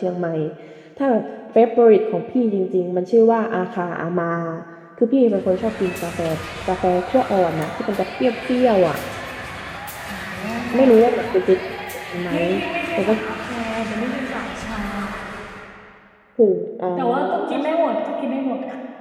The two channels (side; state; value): both; identical; correlation 1.00